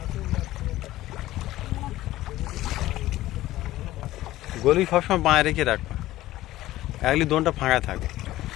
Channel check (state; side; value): quieter; right; 15.7 dB